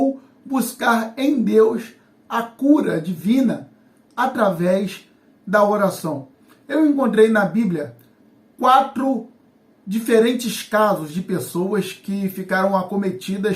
buscar em Deus a cura divina através da oração? Eu encontrei na Bíblia 4 diferentes casos de pessoas que ficaram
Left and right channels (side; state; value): both; identical; correlation 1.00